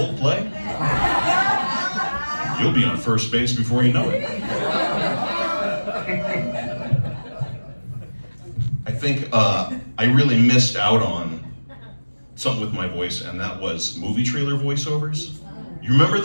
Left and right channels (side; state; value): both; inverted; correlation -1.00